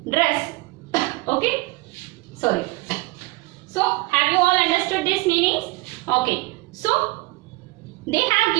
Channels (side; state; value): left; quieter; 22.4 dB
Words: dress. Okay. Sorry. So, have you all understood these meanings? Okay. So, they have